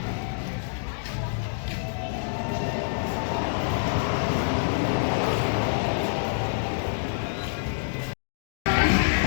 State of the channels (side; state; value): right; silent; digital silence